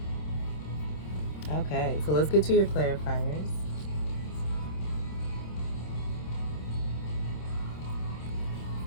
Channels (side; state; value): right; late; 26 ms